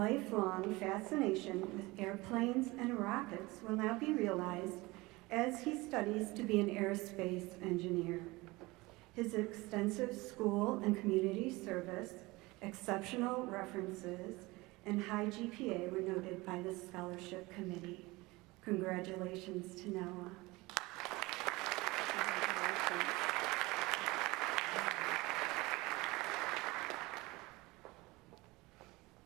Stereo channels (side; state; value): left; quieter; 22.1 dB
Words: fascination with airplanes and rockets will now be realized as he studies to be an aerospace engineer. His extensive school and community service, exceptional references, and high GPA were noted by the scholarship committee. Congratulations to Noah.